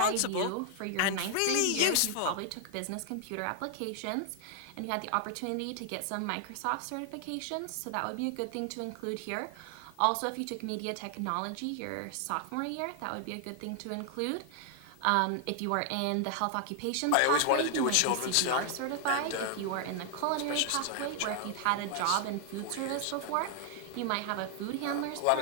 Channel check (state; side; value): different; both; correlation 0.00